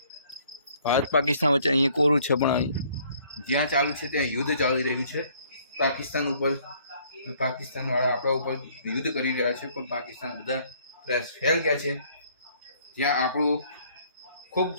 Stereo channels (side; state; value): both; inverted; correlation -0.61